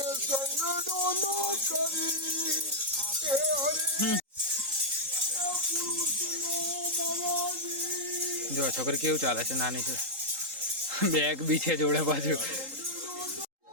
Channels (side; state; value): left; late; 3.8 ms